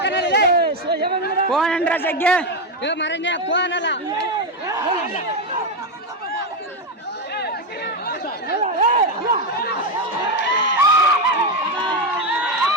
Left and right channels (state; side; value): normal; both; correlation 0.09